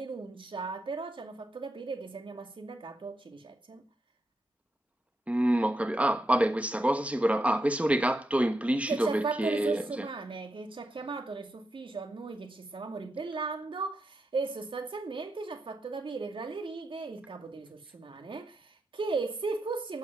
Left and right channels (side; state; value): both; normal; correlation 0.84